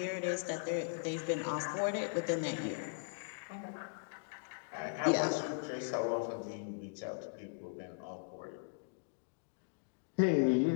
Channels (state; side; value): silent; right; digital silence